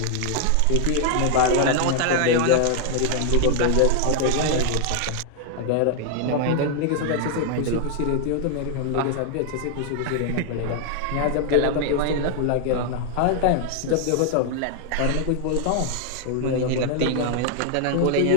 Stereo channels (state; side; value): different; both; correlation 0.00